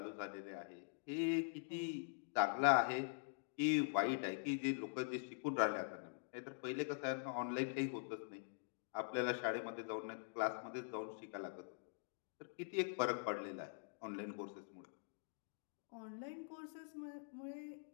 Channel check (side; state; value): right; silent; digital silence